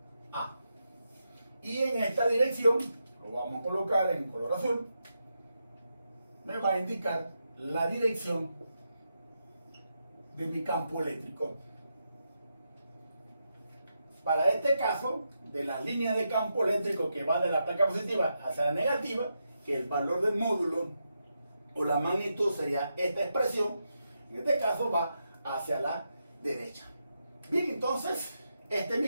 A. Y en esta dirección, lo vamos a colocar en color azul, me va a indicar la dirección de mi campo eléctrico. Para este caso, de la línea de campo eléctrico que va de la placa positiva hacia la negativa, que el valor del módulo o la magnitud sería esta expresión, en este caso va hacia la derecha. Bien, entonces, este es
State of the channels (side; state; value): both; inverted; correlation -0.85